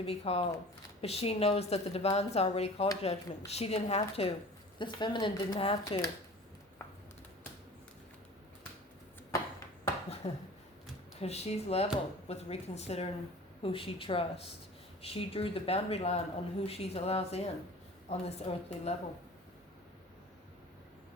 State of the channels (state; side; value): normal; both; correlation 0.42